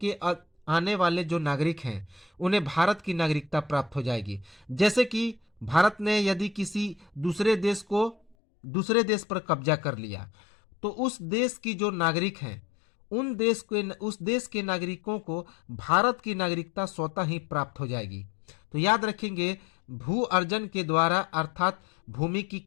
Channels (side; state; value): right; drops out; at 8.3 s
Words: के आने वाले जो नागरिक हैं उन्हें भारत की नागरिकता प्राप्त हो जाएगी। जैसे कि भारत ने यदि किसी दूसरे देश पर कब्जा कर लिया तो उस देश की जो नागरिक हैं उस देश के नागरिकों को भारत की नागरिकता स्वतः ही प्राप्त हो जाएगी। तो याद रखेंगे, भू अर्जन के द्वारा अर्थात भूमि की